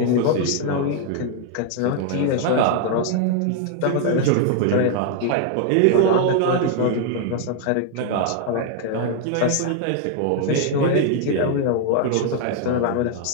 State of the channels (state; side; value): different; both; correlation 0.00